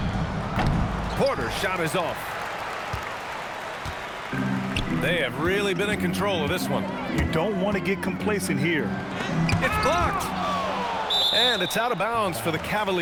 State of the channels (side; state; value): both; identical; correlation 1.00